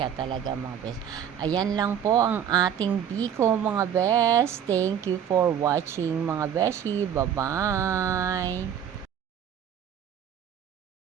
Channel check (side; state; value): left; quieter; 9.0 dB